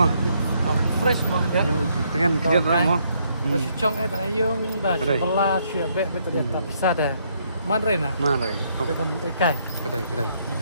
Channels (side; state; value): both; inverted; correlation -0.72